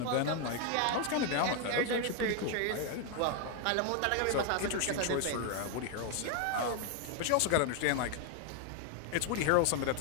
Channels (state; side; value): different; both; correlation 0.01